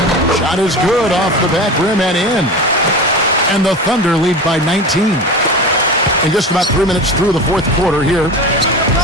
Shot is good off the back rim and in. And the Thunder lead by 19. In just about 3 minutes through the 4th quarter here.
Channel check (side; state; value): both; normal; correlation 0.30